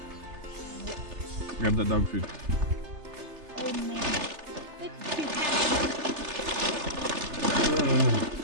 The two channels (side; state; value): left; late; 3.3 ms